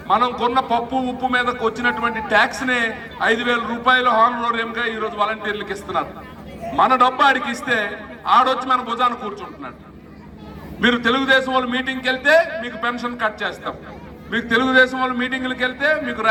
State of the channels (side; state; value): both; identical; correlation 1.00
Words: మనం కొన్న పప్పు ఉప్పు మీదకి వచ్చినటువంటి ట్యాక్స్ నే 5,000 రూపాయలు హానరోరియంగా ఈరోజు వాలంటీర్లకు ఇస్తున్నారు. మన డబ్బు ఆడికి ఇస్తే ఆడొచ్చి మన భుజాన్ని కూర్చుంటున్నాడు. మీరు తెలుగుదేశం వాళ్ళు మీటింగ్కి వెళ్తే మీకు పెన్షన్ కట్ చేస్తాం, మీకు తెలుగుదేశం వాళ్ళు మీటింగ్లకు వెళ్తే మీకు